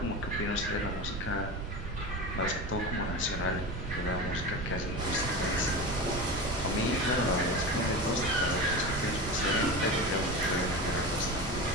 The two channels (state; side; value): noise; right; rumble, 6 dB below the sound